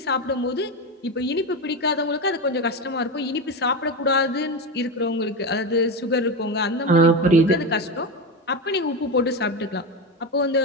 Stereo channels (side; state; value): both; normal; correlation 0.17